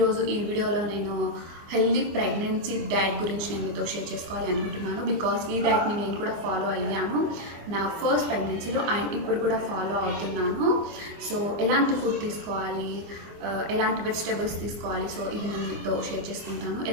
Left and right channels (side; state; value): left; late; 24 ms